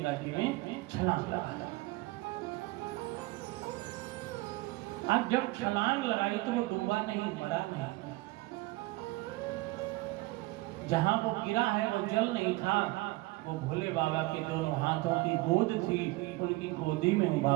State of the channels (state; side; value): quieter; left; 21.0 dB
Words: जी में छलांग लगाया। अब जब छलांग लगाई तो वो डूबा नहीं, मरा नहीं। जहां वो गिरा है वो जल नहीं था, वो भोले बाबा के दोनों हाथों की गोद थी, उनकी गोदी में